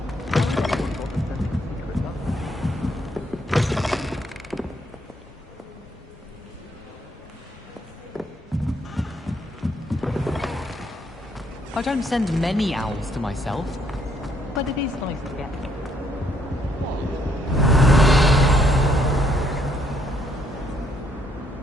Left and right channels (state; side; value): normal; both; correlation 0.70